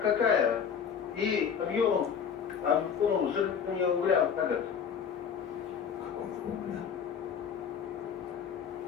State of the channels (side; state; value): right; quieter; 7.3 dB